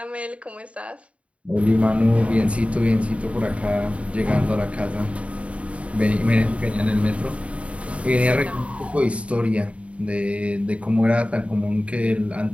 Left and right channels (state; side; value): late; left; 0.064 ms